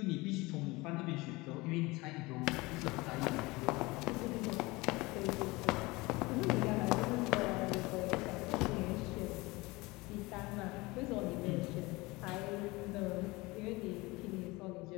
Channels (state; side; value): quieter; right; 22.7 dB